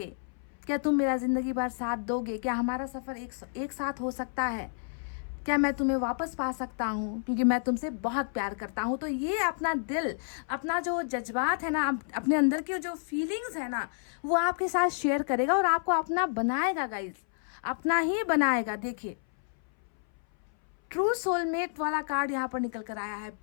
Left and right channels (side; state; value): right; silent; 58 dB below the other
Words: क्या तुम मेरा ज़िंदगी भर साथ दोगे, क्या हमारा सफ़र एक साथ हो सकता है, क्या मैं तुम्हें वापस पा सकता हूँ, क्योंकि मैं तुमसे बहुत प्यार करता हूँ। तो ये अपना दिल, अपना जो जज्बात है ना, अपने अंदर की जो फीलिंग्स है ना, वो आपके साथ शेयर करेगा और आपको अपना बनाएगा गाइज, अपना ही बनाएगा। देखिए ट्रू सोलमेट वाला कार्ड यहाँ पर निकल कर आया है,